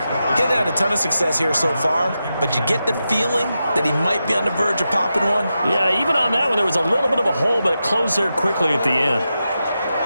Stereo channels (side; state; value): both; inverted; correlation -0.89